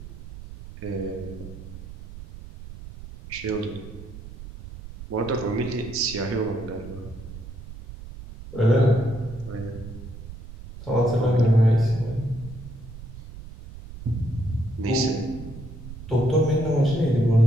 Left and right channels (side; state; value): right; noise; rumble, 13 dB below the sound